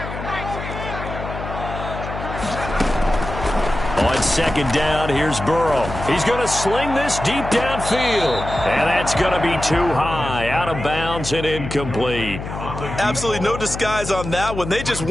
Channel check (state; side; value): noise; left; hum, 8 dB below the sound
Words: On second down, here's Burrow. He's going to sling this deep downfield. And that's going to be too high, out of bounds and incomplete. Absolutely no disguise on that one. They just